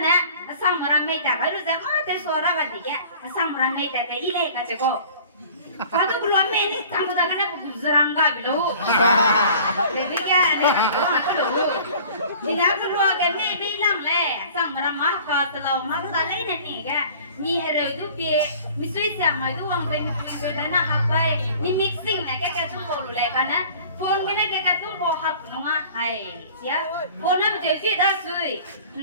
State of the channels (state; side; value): inverted; both; correlation -0.46